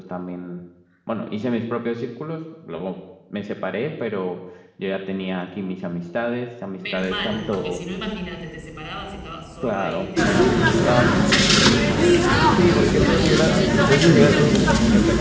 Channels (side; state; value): both; identical; correlation 1.00